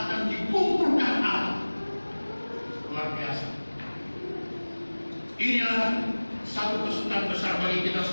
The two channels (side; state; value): both; inverted; correlation -1.00